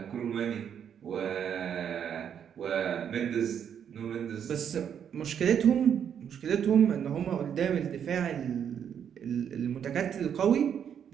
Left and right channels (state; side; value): quieter; left; 8.4 dB